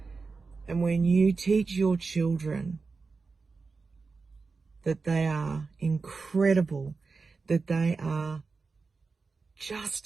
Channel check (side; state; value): left; quieter; 4.4 dB